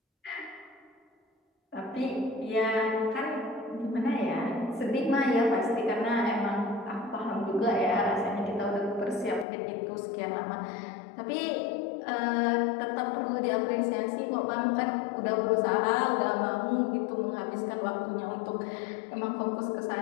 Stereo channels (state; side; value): drops out; right; at 9.5 s